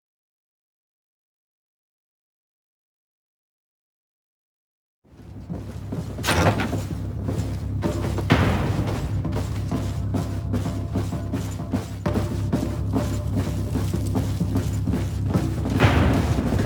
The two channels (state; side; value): identical; both; correlation 1.00